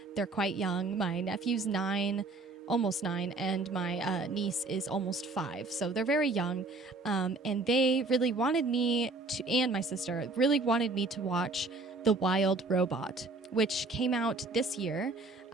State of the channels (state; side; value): quieter; left; 3.4 dB